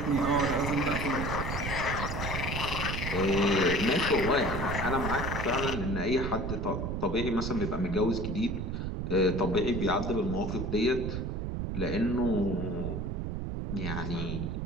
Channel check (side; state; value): right; noise; rumble, 3 dB below the sound